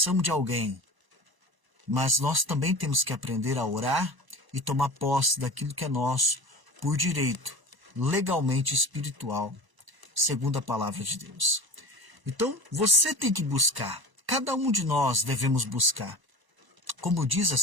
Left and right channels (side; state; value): left; late; 1.0 ms